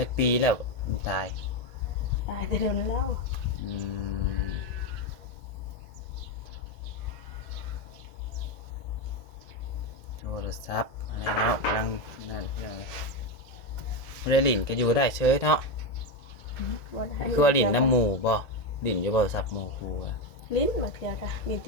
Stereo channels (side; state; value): right; late; 1.9 ms